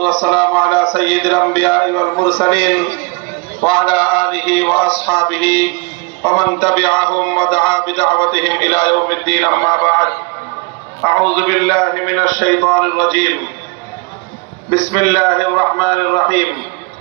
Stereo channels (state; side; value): quieter; left; 28.7 dB